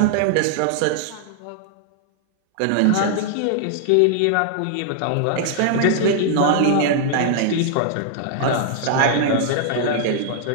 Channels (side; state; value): both; different; correlation -0.01